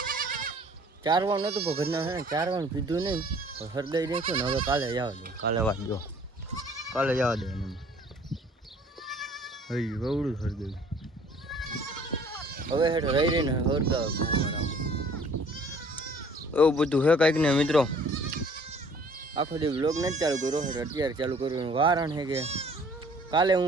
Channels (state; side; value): normal; both; correlation 0.54